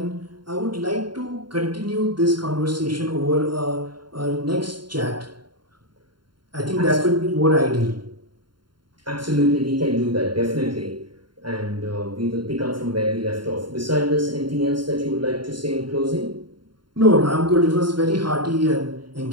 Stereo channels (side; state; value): left; late; 0.72 ms